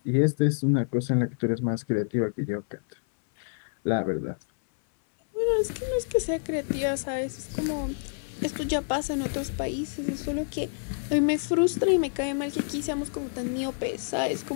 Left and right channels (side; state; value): right; silent; 60 dB below the other